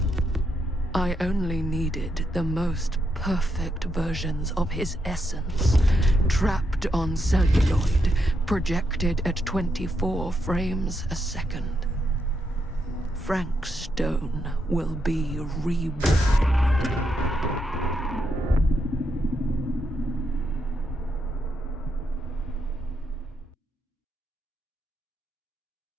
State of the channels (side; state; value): both; normal; correlation 0.81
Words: I only needed the most perfect versions of his essence, trapped on celluloid, projected at 24 frames a second. Frank Stone will be reborn.